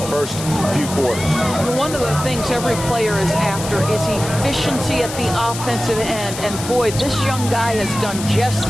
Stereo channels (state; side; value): noise; left; hiss, 9 dB below the sound